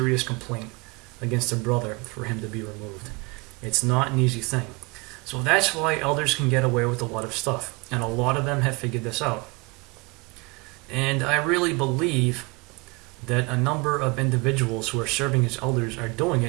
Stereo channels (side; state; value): left; quieter; 28.0 dB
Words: complaint against a brother for him to be removed. It's not an easy thing. So that's why elders can get away with a lot of stuff, and a lot of them have figured this out. And I really believe that a number of individuals who are serving as elders are doing